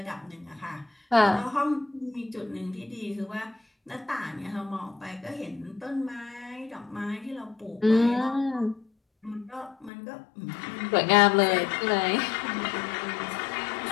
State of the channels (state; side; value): drops out; right; at 9.9 s